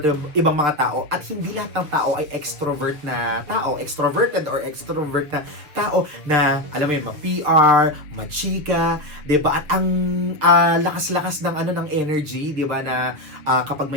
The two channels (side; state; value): left; late; 7.2 ms